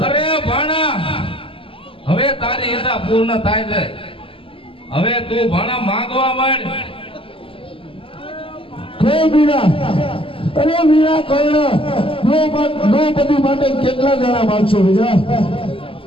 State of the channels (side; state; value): right; late; 0.26 ms